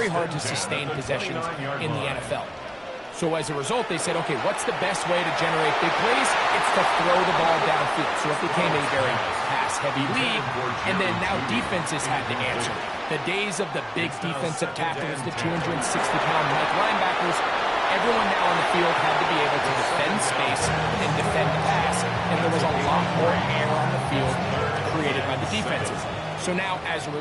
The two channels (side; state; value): both; identical; correlation 1.00